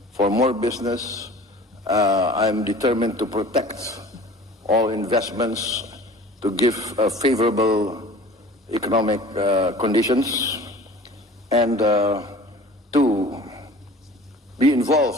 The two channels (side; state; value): both; normal; correlation 0.43